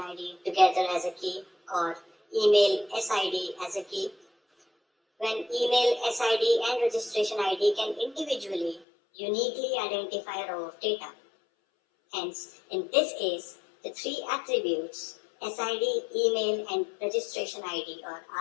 together as a key, or email SID as a key, when email SID and registration ID can individually, uniquely identify a row of data. Hence, in this case, the 3 attributes, SID, email, and registration ID or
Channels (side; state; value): right; drops out; at 8.8 s